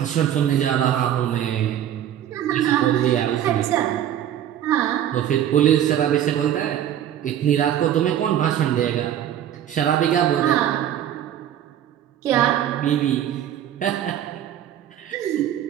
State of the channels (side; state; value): left; quieter; 10.7 dB